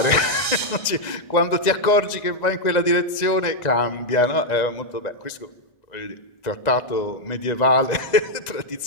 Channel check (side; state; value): right; late; 1.9 ms